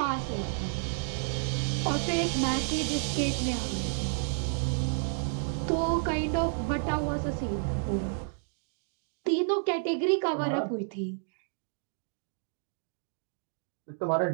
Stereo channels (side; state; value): left; silent; digital silence